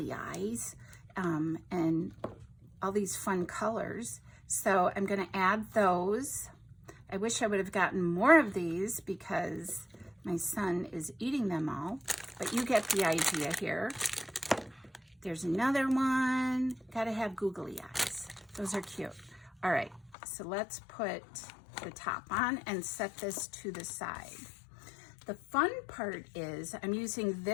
eyes and all these fun colors. So I'm going to add those. I wish I would have gotten more of these because my son is eating them all, but you get the idea here. There's another one. Got to have googly eyes. Those are cute. All right, so let's put the top on and set this to the side. The fun part is I'm using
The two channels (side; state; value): right; drops out; at 20.1 s